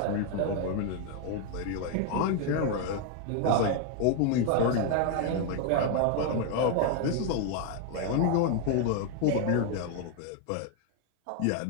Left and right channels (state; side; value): different; both; correlation 0.00